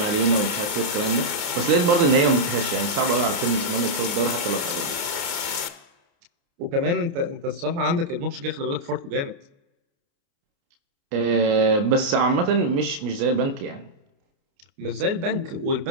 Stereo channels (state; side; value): late; left; 29 ms